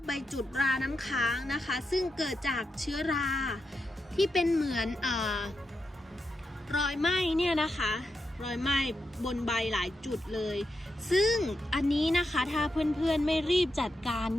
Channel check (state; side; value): normal; both; correlation 0.86